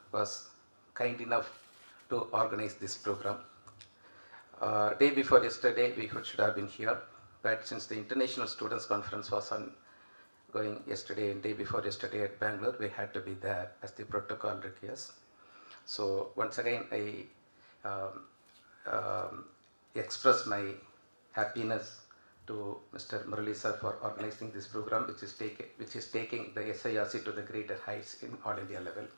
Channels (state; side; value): inverted; both; correlation -1.00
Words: was kind enough to organize this program. Day before yesterday we should have been here, but since the International Students Conference was on going yesterday and day before yesterday at Bangalore, we had to be there as the protocol requires. So once again I express my happiness to Mr. Murali sir for organizing this program, which is taking the SIRC to the greater heights in all India level.